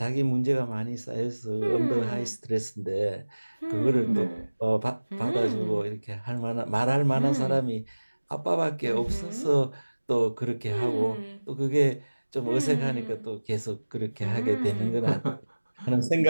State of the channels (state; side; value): inverted; both; correlation -1.00